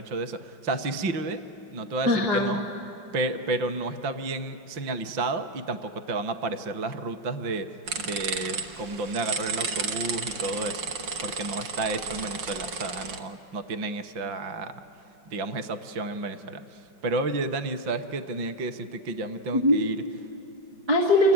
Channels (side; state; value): left; late; 5.6 ms